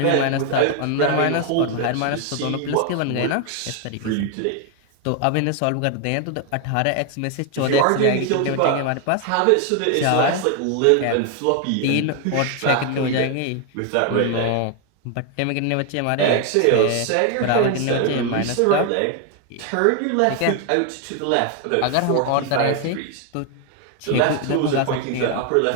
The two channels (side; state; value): both; different; correlation 0.01